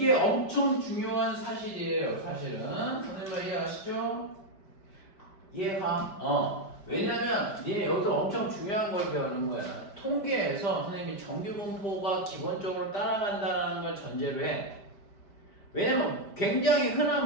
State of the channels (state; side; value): late; right; 5.1 ms